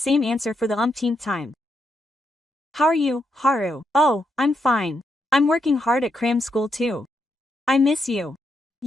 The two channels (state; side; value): normal; both; correlation 0.81